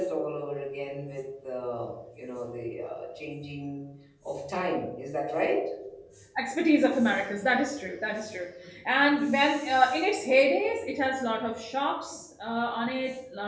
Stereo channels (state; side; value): identical; both; correlation 1.00